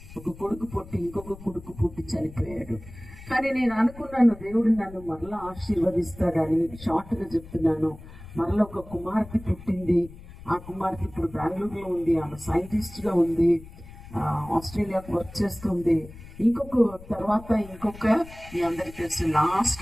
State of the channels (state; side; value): noise; left; rumble, 17 dB below the sound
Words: ఒక కొడుకు పుట్టి ఇంకొక కొడుకు పుట్టి చనిపోయాడు. కానీ నేను అనుకున్నాను, దేవుడు నన్ను మరలా ఆశీర్వదిస్తాడని. షార్ట్గా చెప్తున్నాను, మరలా ఒక కుమార్తె పుట్టింది. ఆ కుమార్తె ఇప్పుడు బెంగళూరులో ఉంది. ఆమె సైంటిస్ట్గా ఉంది, ఆస్ట్రేలియాకు వర్క్ చేస్తుంది. ఇంకొక మీ అందరికీ తెలుసు,